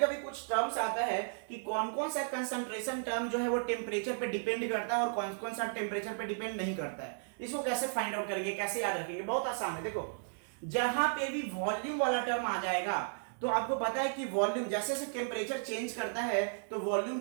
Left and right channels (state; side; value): silent; left; digital silence